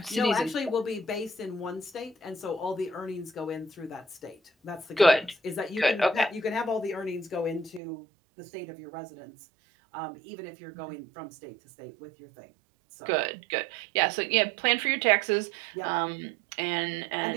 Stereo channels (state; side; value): drops out; left; at 7.8 s